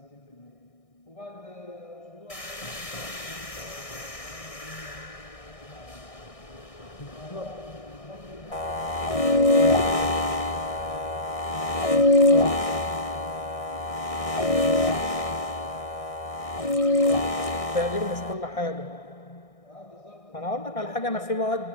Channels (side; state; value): right; late; 1.6 ms